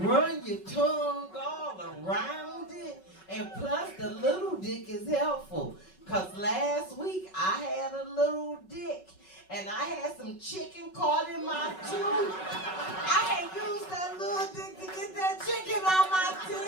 your tongue all around it, and plus the little dick is helpful. Cause last week I had a little dick and I had some chicken caught in my tooth. I had used that little dick to get that chicken on my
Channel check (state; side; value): late; right; 5.3 ms